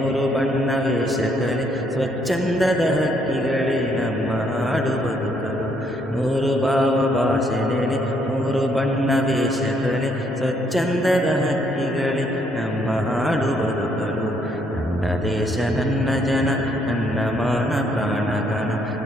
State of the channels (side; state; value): both; normal; correlation 0.70